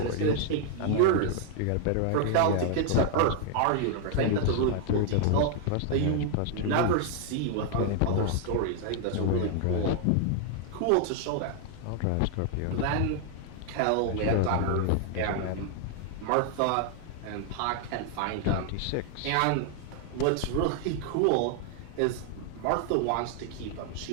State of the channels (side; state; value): both; different; correlation 0.00